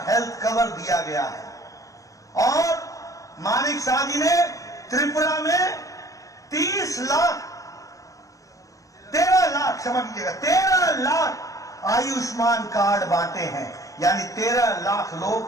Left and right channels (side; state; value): right; late; 0.16 ms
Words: हेल्थ कवर दिया गया है और मानिक शाह जी ने त्रिपुरा में 13 लाख आयुष्मान कार्ड बांटे हैं, यानी 13 लाख